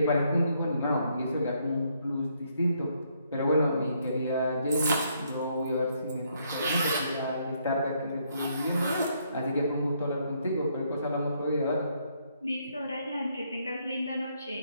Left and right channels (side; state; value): both; inverted; correlation -0.72